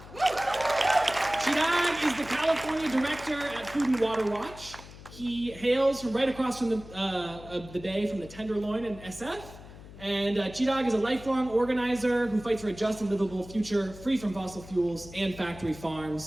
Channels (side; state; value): left; noise; hum, 17 dB below the sound